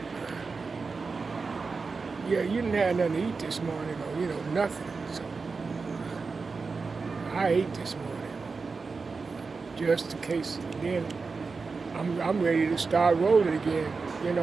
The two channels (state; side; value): quieter; left; 4.5 dB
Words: Yeah, you didn't have nothing to eat this morning, or, nothing. So I ate this morning, just in case. Then I'm ready to start rolling again.